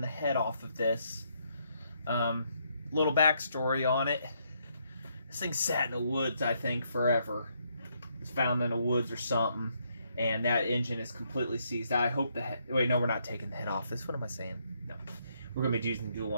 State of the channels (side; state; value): both; inverted; correlation -0.74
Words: the head off of this. Little backstory on it. This thing sat in the woods, I think, forever. It was found in the woods or something, and that engine is completely seized. I hope the head... Wait, no, we're not taking the head off this. What am I saying? No. We're going to be using the dual